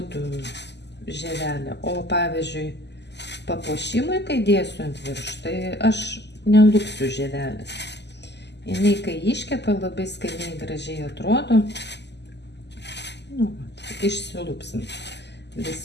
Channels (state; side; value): late; right; 0.50 ms